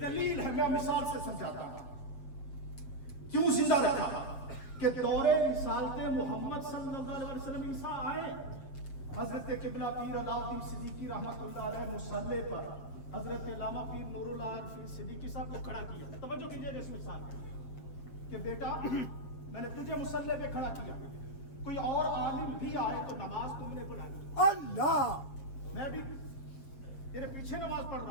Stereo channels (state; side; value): late; right; 7.4 ms